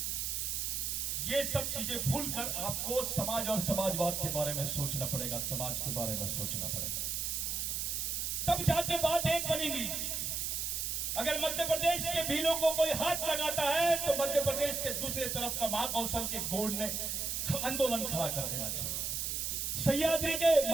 ये सब चीजें भूलकर आपको समाज और समाजवाद के बारे में सोचना पड़ेगा, समाज के बारे में सोचना पड़ेगा, तब जाके बात एक बनेगी। अगर मध्य प्रदेश के भीलों को कोई हाथ लगाता है तो मध्य प्रदेश के दूसरे तरफ का महाकौशल के गोड़ ने आंदोलन खड़ा कर देना चाहिए। सह्याद्री के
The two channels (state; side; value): noise; right; hiss, 1 dB below the sound